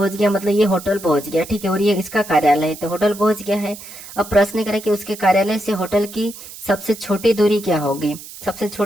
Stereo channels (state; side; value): noise; right; hiss, 15 dB below the sound